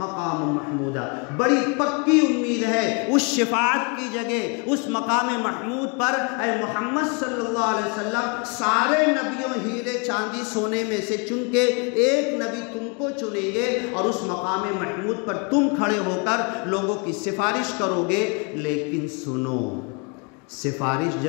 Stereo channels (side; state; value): right; quieter; 33.8 dB